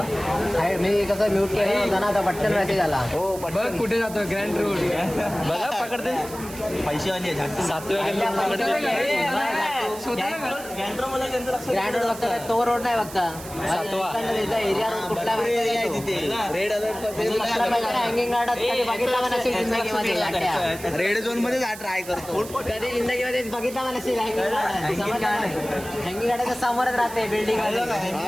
मी कसं म्यूट केलं होतं ना आता पटकन मेसेज आला हो बघ कुठे जातो ग्रँड रोड बघा पकडते पैसे वाली गँड्रो मला त्यांचं लक्ष ग्रँड रोड बघता तो रोड नाही बघता एरिया रोड कुठला रेड हँगिंग गार्डात कधी बघितला पण नसेल जिंदगीमध्ये गाड्या. रेड झोन मध्ये ट्राय करतो कधी जिंदगीमध्ये बघितला पण नसेल हँगिंग गार्ड हँगिंग गार्डाच्या समोरच राहते बिल्डिंग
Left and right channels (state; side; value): noise; right; hiss, 14 dB below the sound